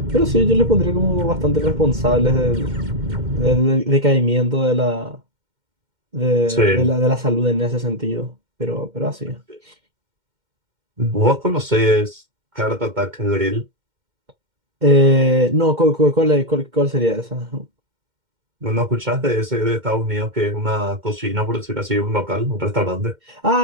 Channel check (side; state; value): left; late; 2.1 ms